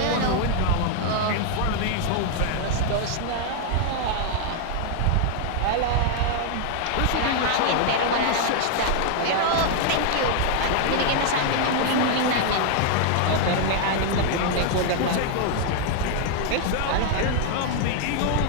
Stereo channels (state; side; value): different; both; correlation 0.00